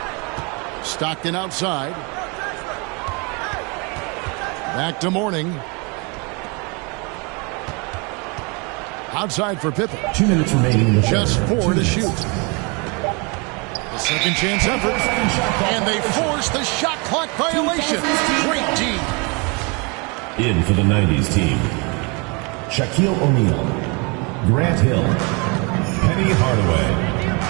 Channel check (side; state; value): left; quieter; 30.9 dB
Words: Stockton outside. Back to Mourning. Outside for Pippen. 2 minutes remaining in the Just 4 to shoot. The second chance effort. And they force the shot clock violation. Great team. In for the 90s team. Shaquille O'Neal. Grant Hill. Penny Hardaway.